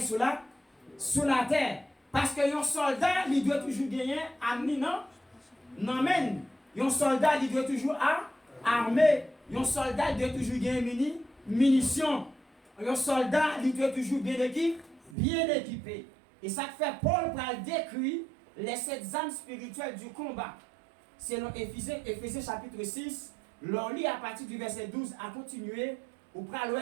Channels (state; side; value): drops out; left; at 15.2 s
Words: sous la terre. Parce que un soldat, il doit toujours gagner armé non men. Un soldat, il doit toujours armé. Un soldat doit toujours gagner munitions. Un soldat, il doit toujours bien équipé. Et ça fait Paul pour décrire les 7 armes spirituelles du combat. Selon Éphésiens chapitre 6, l'on lit à partir du verset 12 à continuer, où